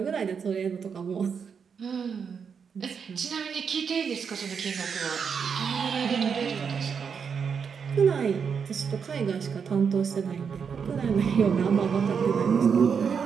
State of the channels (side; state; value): left; quieter; 6.5 dB